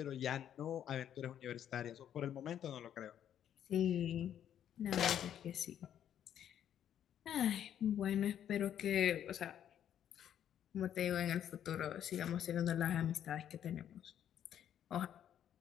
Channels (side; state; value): right; quieter; 10.0 dB